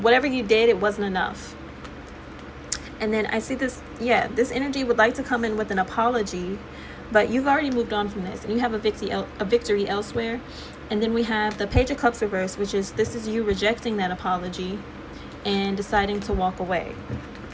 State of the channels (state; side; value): identical; both; correlation 1.00